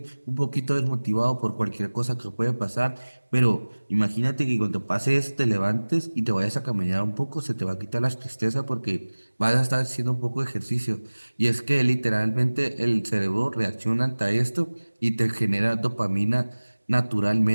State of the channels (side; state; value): both; inverted; correlation -1.00